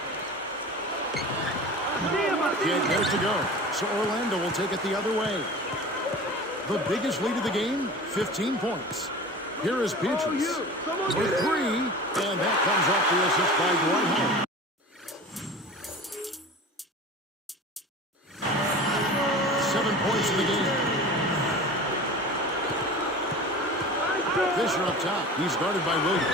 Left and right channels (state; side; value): normal; both; correlation 0.36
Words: Get there to go. So Orlando will take it the other way. The biggest lead of the game, 15 points. Here is Beatrice with 3, and that comes off the assist by Dwight Howard. 7 points in the game. Fisher up top. He's guarded by